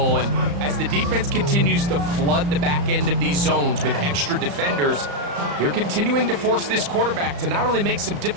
And as the defense continues to flood the back end of these zones with extra defenders, they're continuing to force this quarterback to not only make some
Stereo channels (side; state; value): left; late; 35 ms